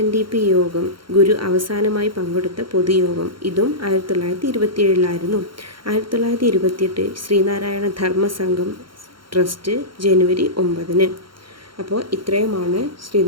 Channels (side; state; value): left; late; 0.73 ms